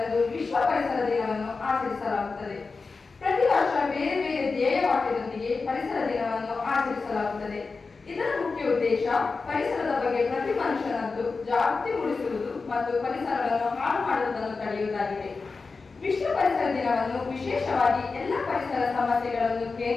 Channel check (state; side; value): quieter; right; 4.3 dB